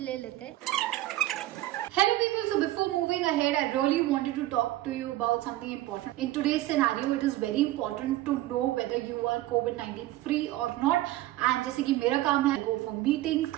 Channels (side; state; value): left; quieter; 15.8 dB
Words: ले लेते हैं। Hello people, so before moving ahead, I really wanted to talk to you about something important. In today's scenario, it is very important to know whether you are COVID-19 free or not. And जैसे कि मेरा काम है go for meetings,